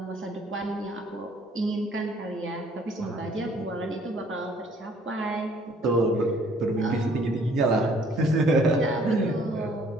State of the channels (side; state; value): both; normal; correlation 0.59